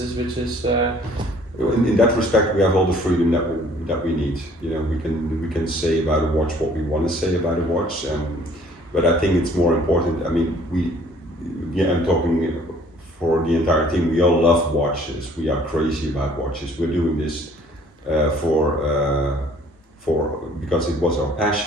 is. In that respect, we have all the freedom that we need. We can say about a watch what we want to say about a watch, but I think it's more important. I mean, I'm talking for the entire team. We all love watches. We are crazy about watches. We're doing this because it was our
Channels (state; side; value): normal; both; correlation 0.56